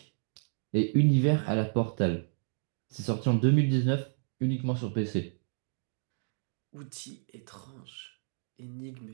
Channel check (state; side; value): silent; left; digital silence